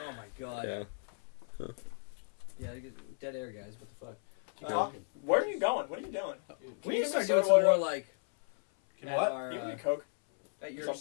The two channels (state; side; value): silent; right; 55 dB below the other